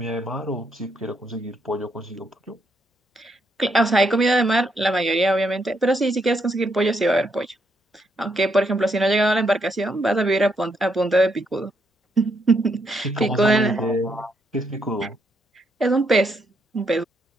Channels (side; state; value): both; normal; correlation 0.76